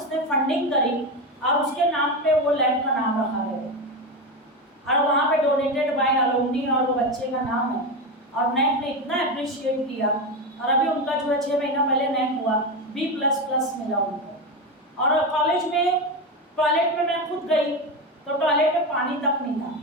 फंडिंग करी, और उसके नाम पे वो लैब का नाम रखा गया, और वहाँ पे डोनेटेड बाय अलुमनी, और वो बच्चे का नाम है। और नैक ने इतना अप्रिशिएट किया, और अभी उनका जो है 6 महीना पहले नैक हुआ, B++ मिला उनको। और कॉलेज में टॉयलेट में मैं खुद गई तो टॉयलेट में पानी तक नहीं था,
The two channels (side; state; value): both; normal; correlation 0.16